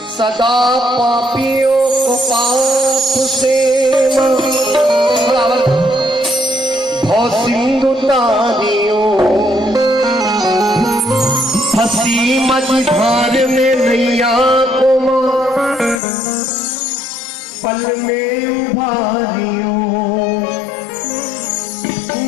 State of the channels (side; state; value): right; drops out; at 16.0 s